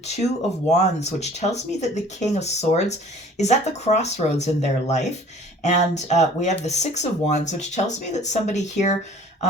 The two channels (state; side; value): normal; both; correlation 0.50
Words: of Wands, which tells me that the King of Swords is at the crossroads in their life. And we have the Six of Wands, which tells me that somebody here,